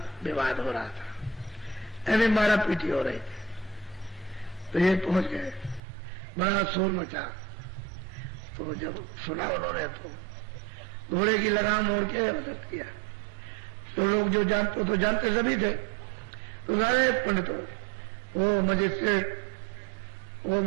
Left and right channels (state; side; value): drops out; left; at 5.8 s